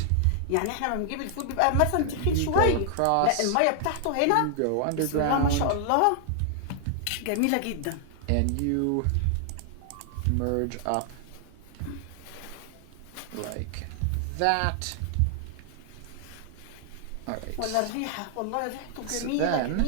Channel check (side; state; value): both; different; correlation 0.00